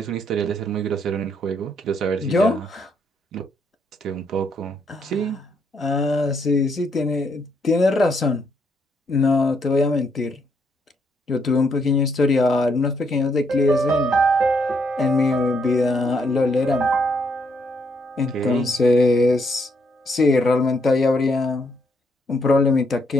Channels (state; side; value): normal; both; correlation 0.74